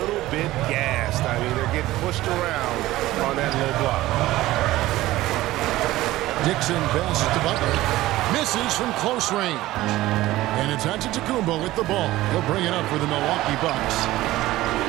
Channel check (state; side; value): quieter; left; 16.7 dB